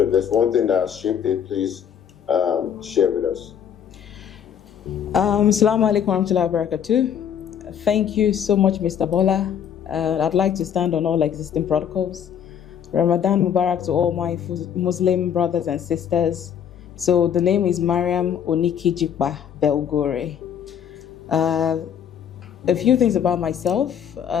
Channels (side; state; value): right; quieter; 8.6 dB